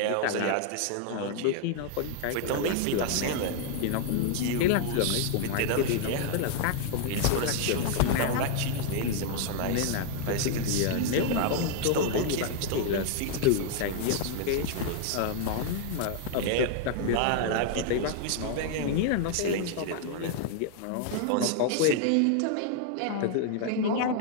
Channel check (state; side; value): different; both; correlation 0.00